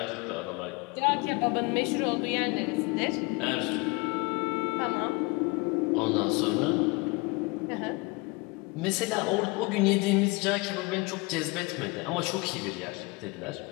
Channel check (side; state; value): right; quieter; 25.7 dB